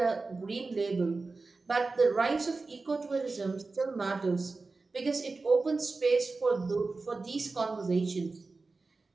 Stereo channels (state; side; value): quieter; left; 3.8 dB